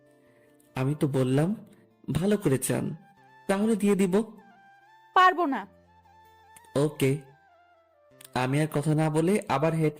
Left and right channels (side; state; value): both; identical; correlation 1.00